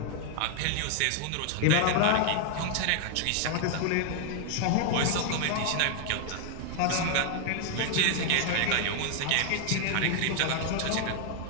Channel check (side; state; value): both; different; correlation 0.00